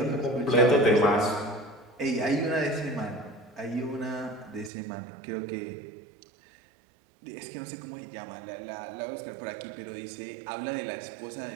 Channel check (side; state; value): left; drops out; at 4.7 s